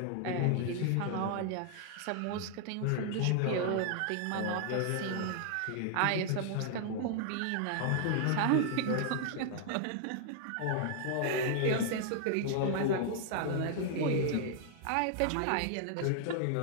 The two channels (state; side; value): different; both; correlation 0.00